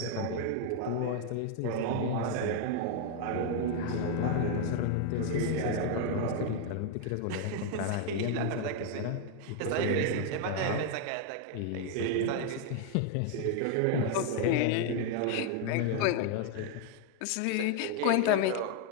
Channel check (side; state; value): both; different; correlation 0.00